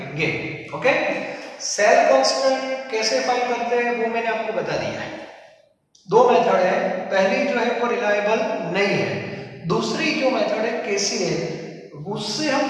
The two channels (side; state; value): both; identical; correlation 1.00